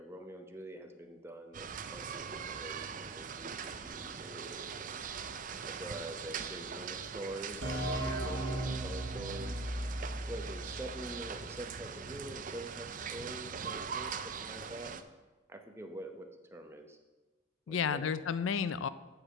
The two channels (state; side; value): normal; both; correlation 0.30